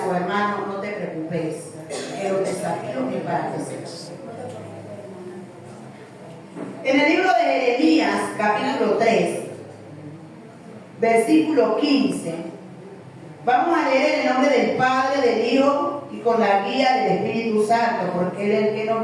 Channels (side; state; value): both; identical; correlation 1.00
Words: su hermano, no te preocupes, que los desafíos es para crecer. En el libro de Jeremías, capítulo 3, versículo 15, vamos a leer en el nombre del Padre, del Hijo y con la guía del Espíritu Santo, porque Él es el que